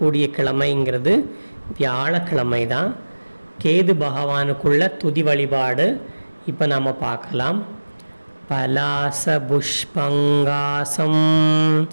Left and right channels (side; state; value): both; inverted; correlation -1.00